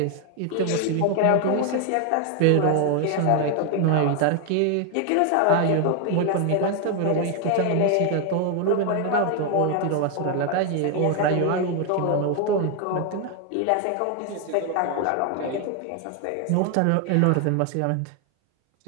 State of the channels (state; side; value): different; both; correlation 0.01